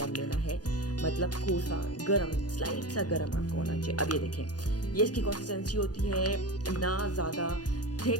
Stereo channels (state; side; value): late; right; 0.69 ms